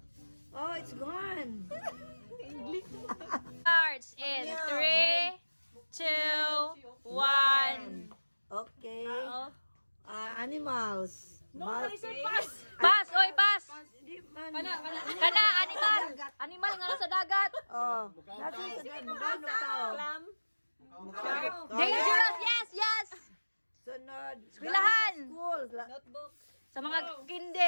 Oh, it's gone. Starts in 3, 2, 1. Okay. Animals. Pass, oy, pass. Kana, animal. Animal nga sa dagat. Oh, that's it. Magano tao. Dangerous, yes. Sunod. Eskwelahan. School. Sa mga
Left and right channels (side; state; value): both; inverted; correlation -1.00